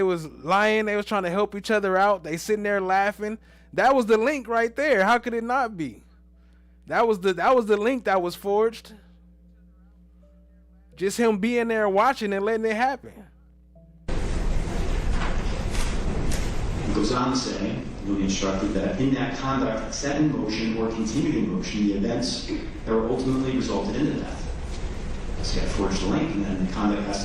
was lying. They was trying to help each other out. They sitting there laughing. That was the link right there. How could it not be? That was the link that was forged. Just him being there watching and letting it happen. It goes on to say, you'll be instructed that in that conduct set in motion or continued in motion the events that were ultimately resulted in the death. So you have forged a link, and then the conduct has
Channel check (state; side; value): identical; both; correlation 1.00